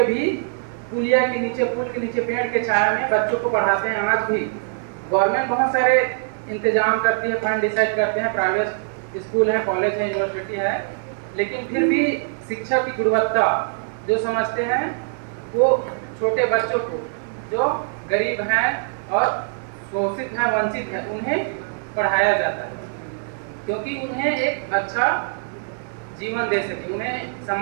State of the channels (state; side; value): silent; left; digital silence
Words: भी पुलिया के नीचे, पुल के नीचे, पेड़ के छाया में बच्चों को पढ़ाते हैं। आज भी गवर्नमेंट बहुत सारे इंतजाम करती है, फंड डिसाइड करते हैं, प्राइवेट स्कूल है, कॉलेज है, यूनिवर्सिटी है, लेकिन फिर भी शिक्षा की गुणवत्ता जो समझते हैं वो छोटे बच्चों को जो गरीब हैं और शोषित हैं, वंचित हैं, उन्हें पढ़ाया जाता है, क्योंकि उन्हें एक अच्छा जीवन दे सके, उन्हें